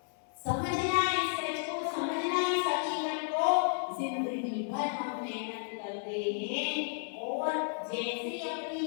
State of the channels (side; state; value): right; silent; 56 dB below the other